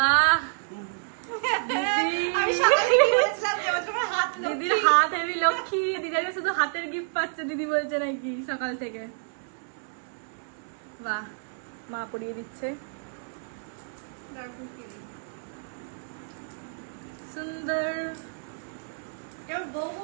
দিদির হাত হেভি লক্ষ্মী। দিদাকে শুধু হাতের গিফট পাচ্ছে দিদি বলছে নাকি সকাল থেকে। বাহ, মা পরিয়ে দিচ্ছে। সুন্দর বউ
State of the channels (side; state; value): left; silent; digital silence